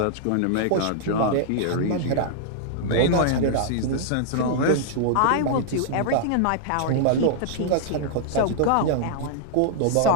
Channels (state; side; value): different; both; correlation -0.01